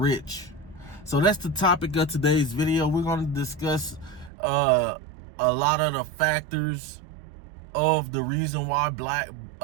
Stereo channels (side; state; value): left; drops out; at 4.3 s